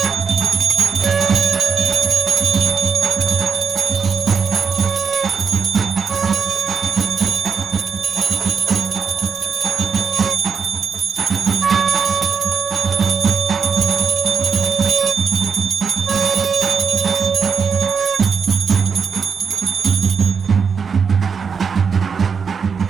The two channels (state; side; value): quieter; left; 6.0 dB